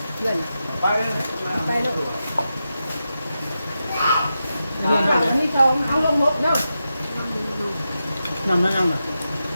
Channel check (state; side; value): inverted; both; correlation -0.89